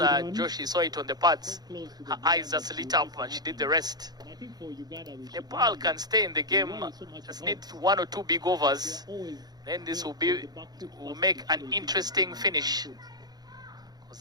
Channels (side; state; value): left; late; 0.19 ms